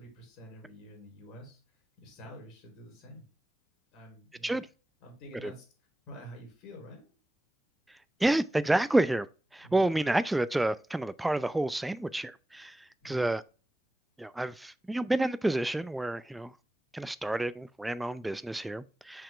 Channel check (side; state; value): both; normal; correlation 0.96